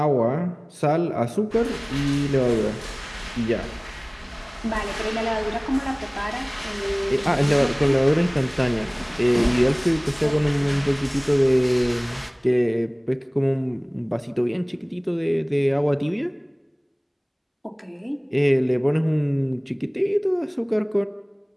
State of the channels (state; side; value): identical; both; correlation 1.00